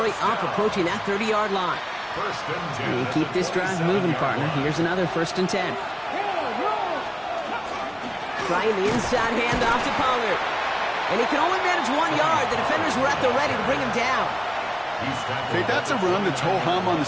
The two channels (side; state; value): both; identical; correlation 1.00